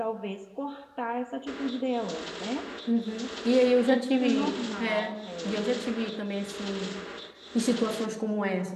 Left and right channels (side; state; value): both; identical; correlation 1.00